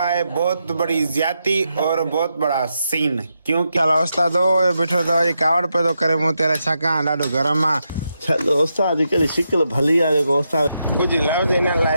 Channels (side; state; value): both; inverted; correlation -0.84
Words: है बहुत बड़ी ज्यादती और बहुत बड़ा सीन। क्योंकि उस्ताद बैठो तो ये कावड़ पे तो करे मुँह तेरा छका ॾाढो गरम आ। चलो उस्ताद कहिड़ी शिकिल भली आहे जेको उस्ताद कुछ लफ्ज़ इन